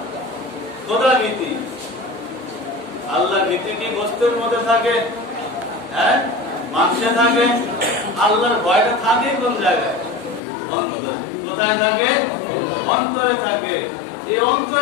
খোদা ভীতি। আল্লাহর ভীতি কি গোশতের মধ্যে থাকে? হ্যাঁ, মাংসে থাকে। আল্লাহর ভয়টা থাকে কোন জায়গায়? অন্তরে। কোথায় থাকে? অন্তরে থাকে। এই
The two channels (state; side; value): drops out; right; at 10.4 s